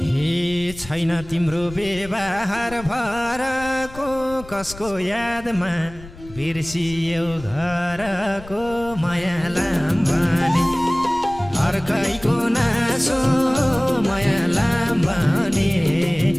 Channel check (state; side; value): noise; left; rumble, 17 dB below the sound